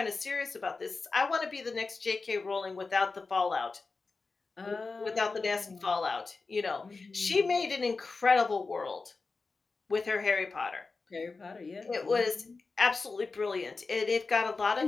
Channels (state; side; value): quieter; right; 4.1 dB